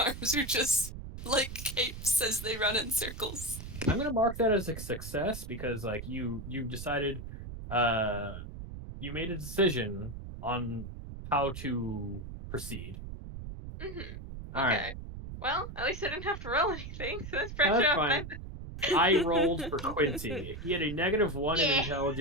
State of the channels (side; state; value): right; noise; rumble, 10 dB below the sound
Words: are just like capes as they run in circles. I'm gonna mark that as a success because like you decided you made a decision on how to proceed. Mm-hmm. All Okay. right. Well, at least I didn't have to roll anything, so that's pressure That's off fine. my I rolled for Quincy. He had a -1 in Yeah.